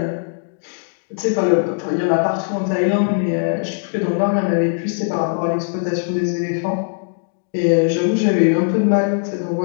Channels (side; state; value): right; silent; digital silence